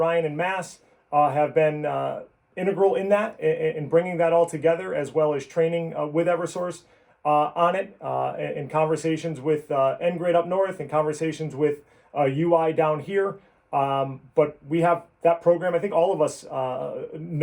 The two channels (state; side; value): identical; both; correlation 1.00